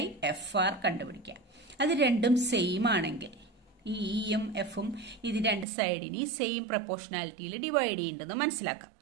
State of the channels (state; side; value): drops out; left; at 5.7 s